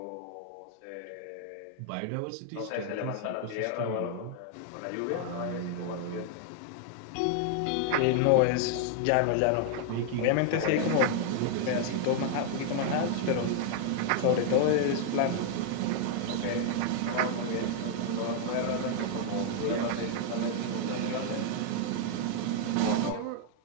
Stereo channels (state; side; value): different; both; correlation 0.00